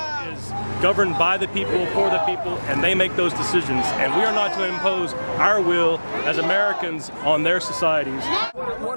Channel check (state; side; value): inverted; both; correlation -1.00